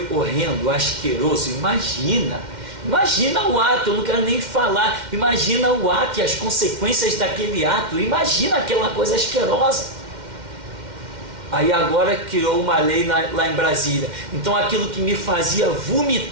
horrendo, asqueroso. Imagina o ato, eu não quero nem falar, imagina o ato e as consequências daquele ato, imagina aquela coisa asquerosa. Aí agora criou uma lei lá em Brasília, então aquilo que me fazia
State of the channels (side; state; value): left; late; 2.1 ms